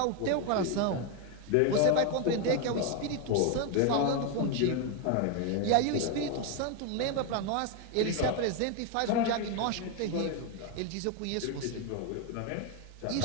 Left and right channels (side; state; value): both; different; correlation 0.01